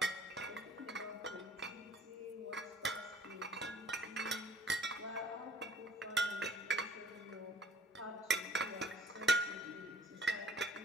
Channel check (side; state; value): both; normal; correlation 0.53